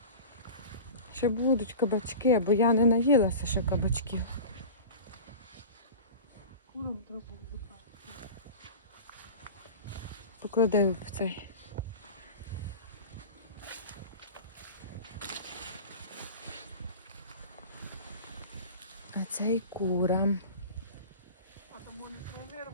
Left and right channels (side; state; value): both; inverted; correlation -0.33